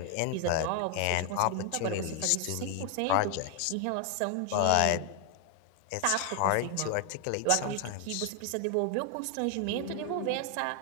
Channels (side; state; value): both; different; correlation 0.00